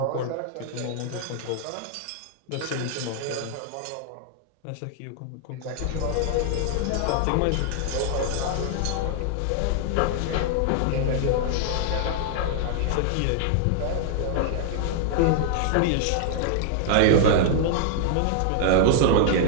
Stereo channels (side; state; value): both; different; correlation 0.00